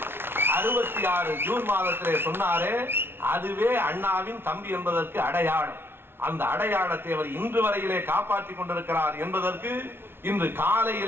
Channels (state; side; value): late; left; 0.11 ms